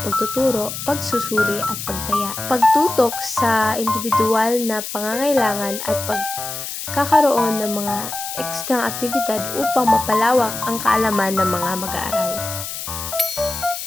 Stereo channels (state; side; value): noise; left; hiss, 7 dB below the sound